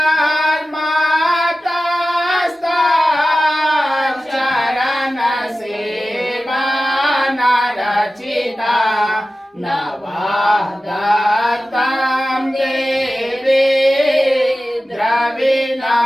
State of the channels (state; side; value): normal; both; correlation 0.95